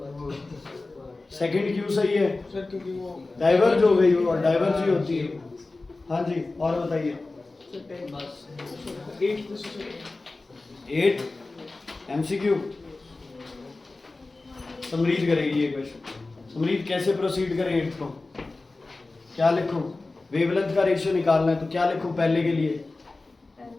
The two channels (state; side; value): quieter; right; 3.3 dB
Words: सेकंड क्यू सही है, सर क्योंकि वो डाइवर्ज हो गई वो, और डाइवर्ज ही होती है। हाँ जी और बताइए। बस 8 MCQ समरीत करेगी ये क्वेश्चन। समरीत कैसे प्रोसीड करें 8 को, क्या लिखूं? वेवलेंथ का रेशियो निकालना है तो क्या लिखूं पहले के लिए?